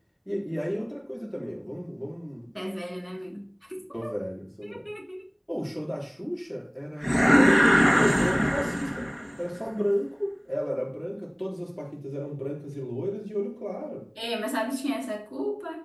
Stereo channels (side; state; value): both; identical; correlation 1.00